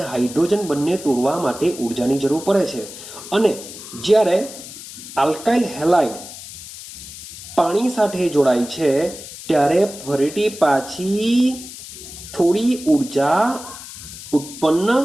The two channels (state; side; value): noise; left; hiss, 13 dB below the sound